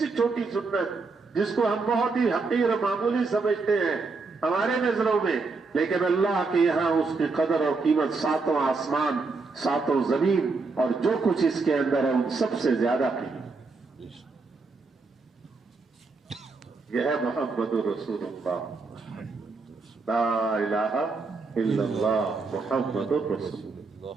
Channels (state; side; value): quieter; left; 4.1 dB